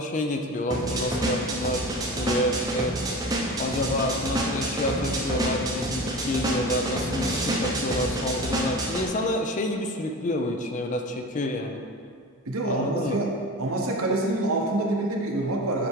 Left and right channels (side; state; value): both; normal; correlation 0.32